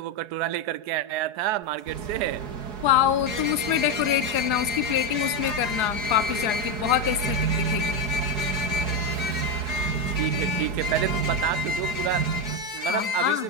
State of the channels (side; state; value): left; late; 4.8 ms